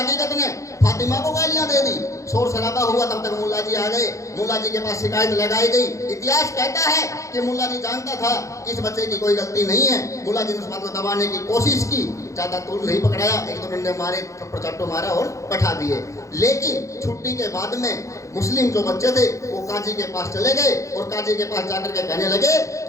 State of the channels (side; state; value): right; late; 0.15 ms